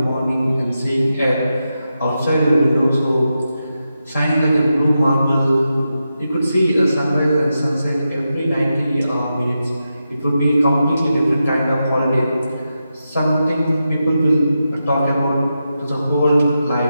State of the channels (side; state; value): both; inverted; correlation -0.88